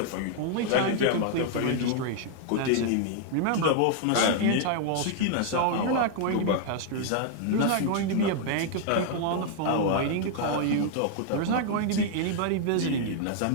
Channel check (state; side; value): different; both; correlation 0.00